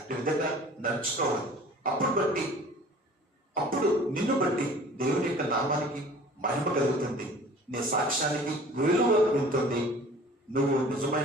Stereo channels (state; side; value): normal; both; correlation 0.47